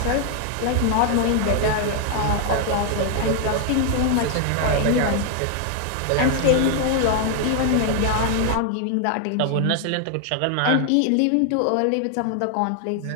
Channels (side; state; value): both; different; correlation 0.00